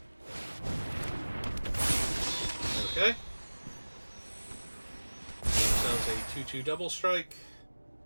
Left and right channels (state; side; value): inverted; both; correlation -1.00